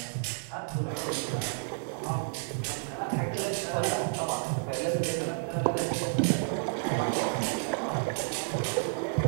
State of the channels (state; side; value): silent; left; 57 dB below the other